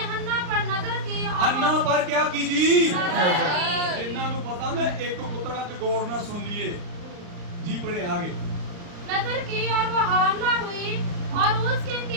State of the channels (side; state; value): left; late; 39 ms